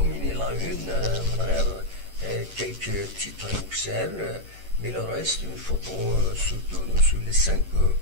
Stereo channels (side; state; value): left; late; 10 ms